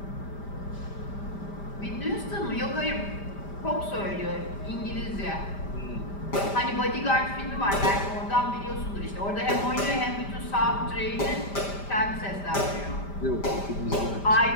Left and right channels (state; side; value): late; right; 5.0 ms